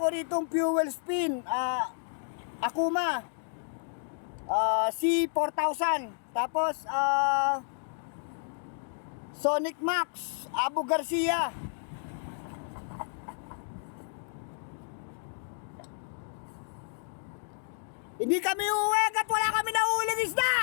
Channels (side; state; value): right; silent; digital silence